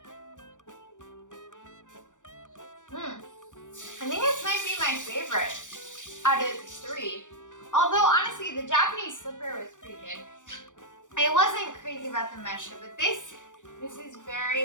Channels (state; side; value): late; right; 0.86 ms